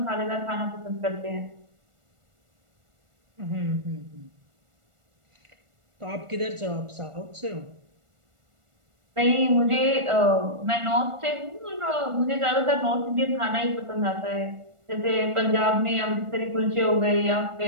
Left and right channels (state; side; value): late; left; 1.4 ms